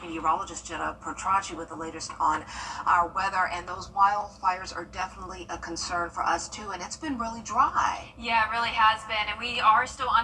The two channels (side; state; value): both; identical; correlation 1.00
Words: Jenna Petracci with the latest on our weather. And those wildfires are definitely a concern for us too, and it's been really dry. Yeah, it really has been, and we are still